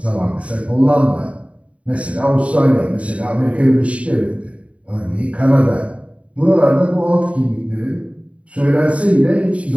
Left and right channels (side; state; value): left; late; 0.064 ms